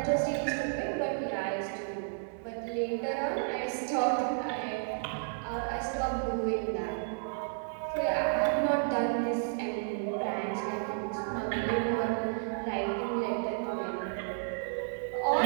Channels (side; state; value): left; silent; digital silence